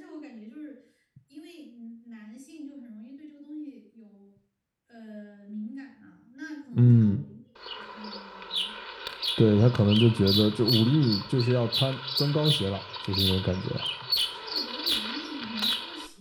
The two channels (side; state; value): both; identical; correlation 1.00